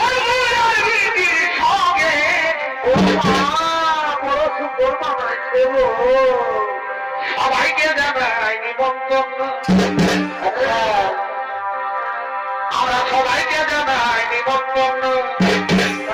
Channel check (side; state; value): both; identical; correlation 1.00